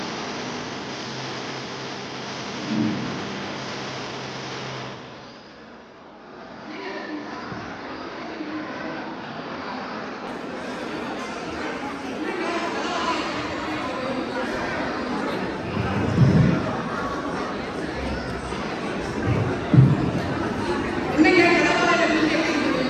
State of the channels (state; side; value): identical; both; correlation 1.00